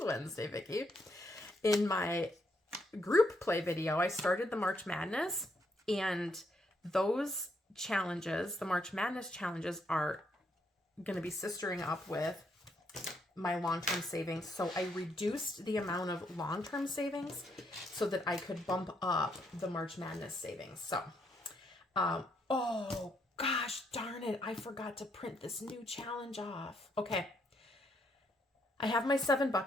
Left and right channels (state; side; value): normal; both; correlation 0.75